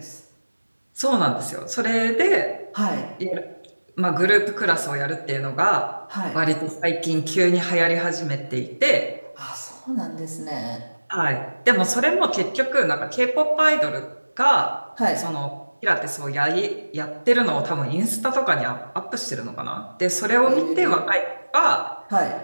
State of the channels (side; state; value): both; inverted; correlation -1.00